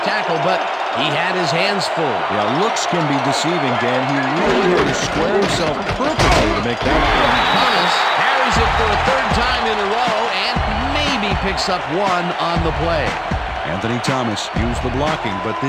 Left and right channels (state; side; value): identical; both; correlation 1.00